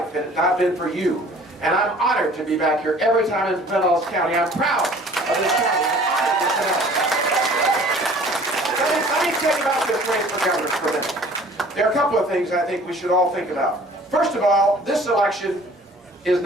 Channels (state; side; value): normal; both; correlation 0.50